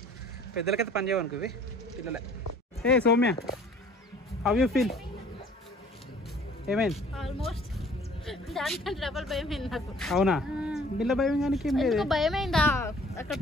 పెద్దలకైతే పని చేయవనుకో ఇవి, పిల్లలే. ఏ సౌమ్య, హౌ యూ ఫీల్? ఏమైంది? ఆల్మోస్ట్ దానికంటే డబల్ భయమైంది నాకు. అవునా? బిల్ల భయం కానీ భయమైందా? అక్కడ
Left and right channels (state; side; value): normal; both; correlation 0.53